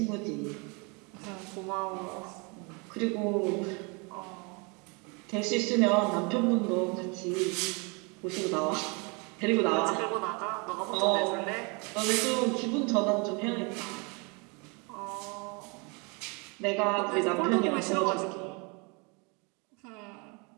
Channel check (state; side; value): quieter; left; 31.1 dB